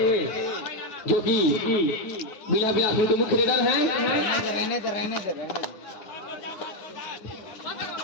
जो कि बिलासपुर के मुख्य रेडर हैं। रहने दे।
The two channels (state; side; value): late; right; 9.7 ms